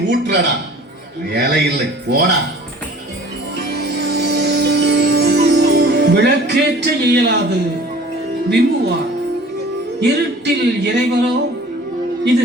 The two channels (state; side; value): normal; both; correlation 0.47